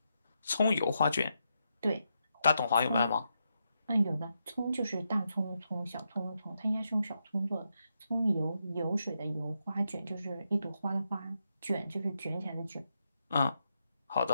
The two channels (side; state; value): both; inverted; correlation -0.83